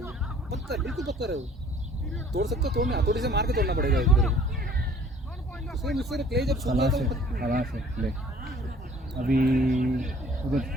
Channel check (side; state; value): both; normal; correlation 0.54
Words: ये, पत्थर बिल्कुल पत्थर है वो, तोड़ सकते हो, तोड़ना हथौड़ी से मार के तोड़ना पड़ेगा इधर, उसमें मुझसे क्ले जब सूख जाता है हवा से प्ले. अभी